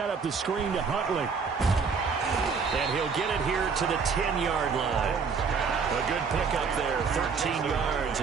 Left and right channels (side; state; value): left; quieter; 5.5 dB